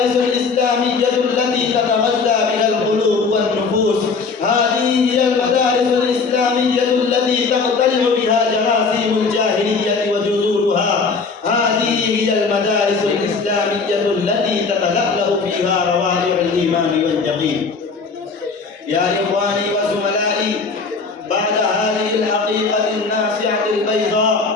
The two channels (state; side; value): quieter; right; 4.7 dB